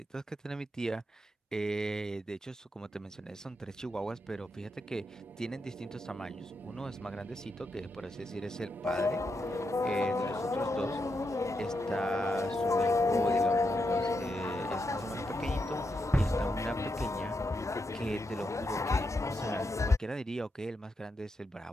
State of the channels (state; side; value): normal; both; correlation 0.83